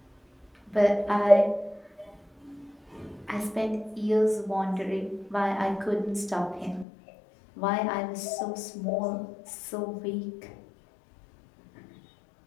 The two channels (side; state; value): right; drops out; at 6.9 s